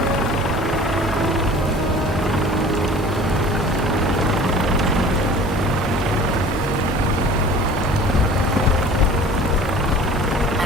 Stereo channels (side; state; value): both; normal; correlation 0.45